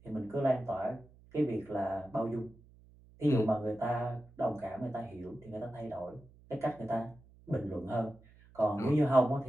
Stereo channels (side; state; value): right; noise; hum, 25 dB below the sound